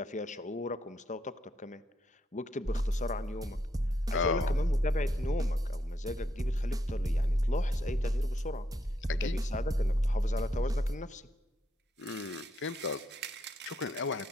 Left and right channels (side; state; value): both; normal; correlation 0.78